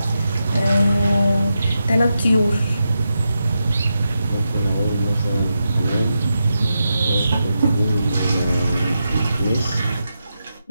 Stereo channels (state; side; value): inverted; both; correlation -0.88